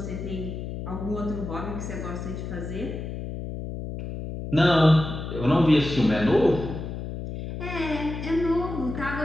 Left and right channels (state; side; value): noise; left; hum, 7 dB below the sound